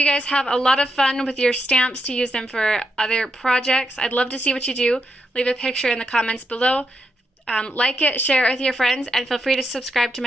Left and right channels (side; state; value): both; normal; correlation 0.83